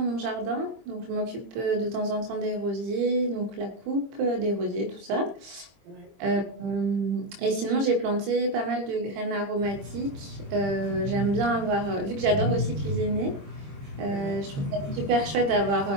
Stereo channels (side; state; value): left; late; 22 ms